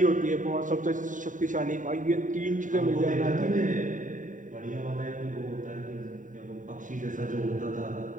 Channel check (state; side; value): late; left; 0.37 ms